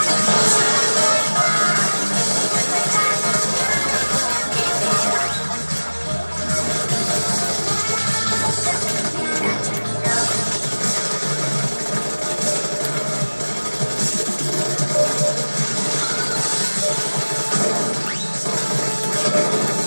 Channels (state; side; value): inverted; both; correlation -1.00